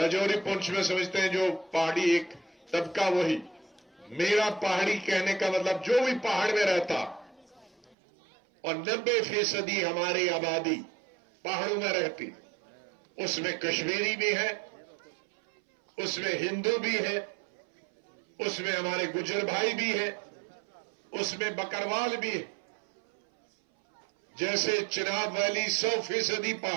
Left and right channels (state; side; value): drops out; left; at 8.0 s